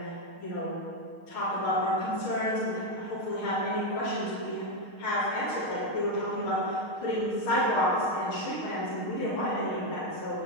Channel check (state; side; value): late; right; 6.5 ms